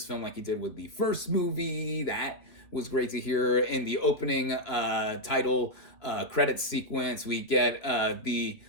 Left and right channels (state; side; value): late; right; 2.7 ms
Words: film like he did with the first movie. That was great to hear. In the opening title credit sequence, we get the